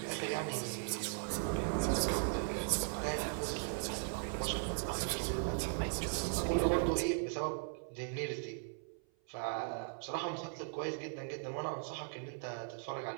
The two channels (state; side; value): silent; left; 52 dB below the other